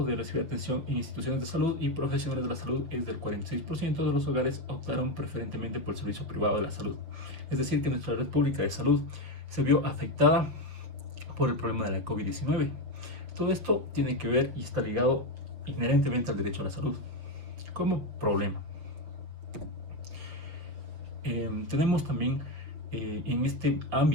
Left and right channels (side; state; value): left; late; 6.2 ms